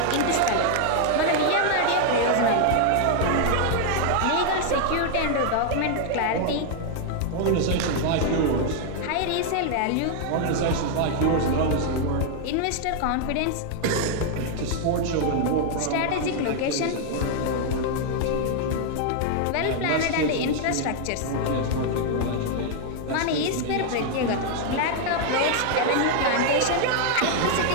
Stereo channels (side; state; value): both; different; correlation 0.00